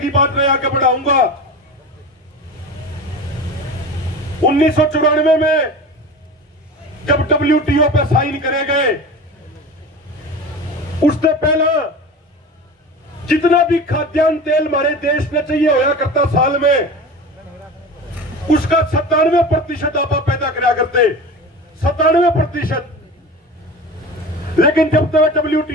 बात मैं आगे बढ़ाऊंगा। 1994 में जब WTO पे साइन करे गए, उससे पहला जितना भी खाद्यान्न तेल हमारे देश में चाहिए होया करता साल में, उसका 97% आप पैदा करा करते, 97%। लेकिन जब तक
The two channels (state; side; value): normal; both; correlation 0.33